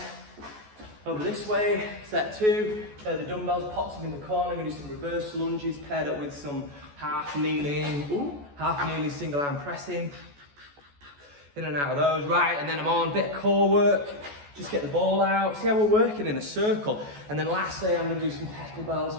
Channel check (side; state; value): left; late; 14 ms